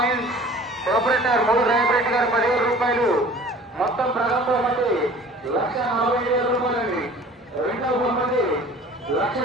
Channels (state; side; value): normal; both; correlation 0.46